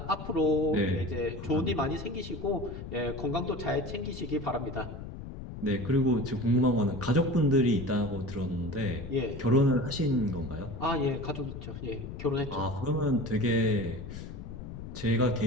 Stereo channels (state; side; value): noise; left; rumble, 10 dB below the sound